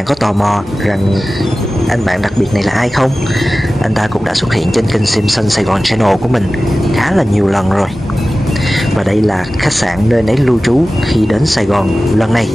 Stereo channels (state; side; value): normal; both; correlation 0.96